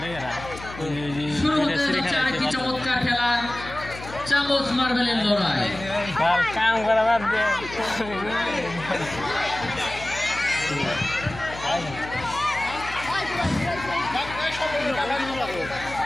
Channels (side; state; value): left; noise; hum, 14 dB below the sound